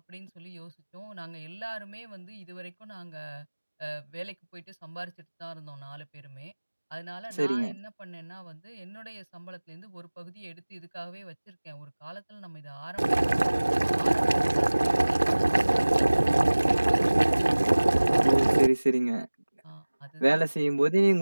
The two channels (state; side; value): inverted; both; correlation -1.00